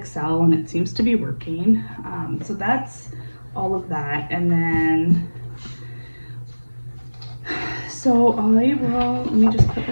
and it seems to be working. So that's all of that. And then, so let me just put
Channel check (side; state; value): both; inverted; correlation -1.00